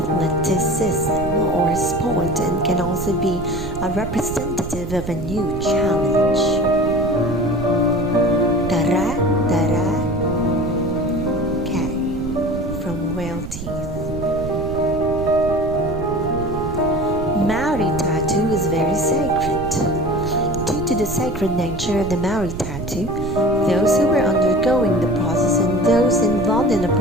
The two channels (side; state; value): right; noise; rumble, 8 dB below the sound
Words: or sport and can also be a representative of a new challenge. Dara, dara, from whale teeth. Maori tattoo is very sacred. Due to the sacred nature of the Maori tattoo, those who were undergoing the process and those involved in the